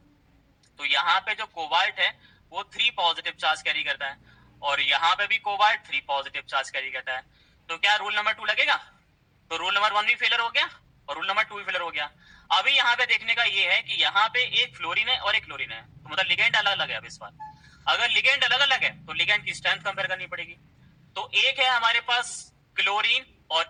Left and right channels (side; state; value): both; identical; correlation 1.00